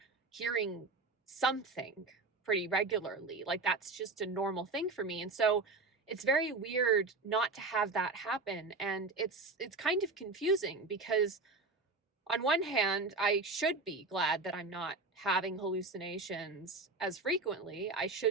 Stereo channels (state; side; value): quieter; left; 3.6 dB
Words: hearing something pretty regularly. Like that's just a normal thing for me. And so it's very weird not to have that happen. And it's kind of confusing because on one hand, I should be glad that I'm not having hallucinations as frequently. I